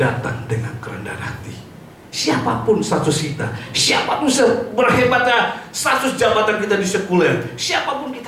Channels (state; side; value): identical; both; correlation 1.00